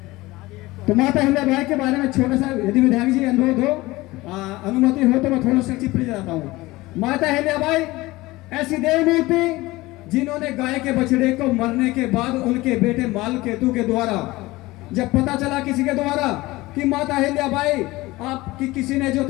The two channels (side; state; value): right; quieter; 19.9 dB